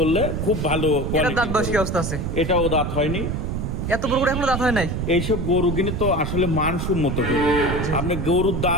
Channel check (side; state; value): right; noise; rumble, 2 dB below the sound